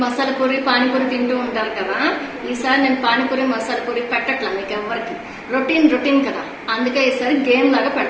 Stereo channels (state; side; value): identical; both; correlation 1.00